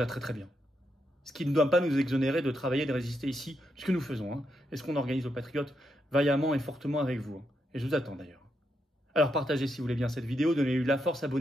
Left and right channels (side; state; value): both; normal; correlation 0.81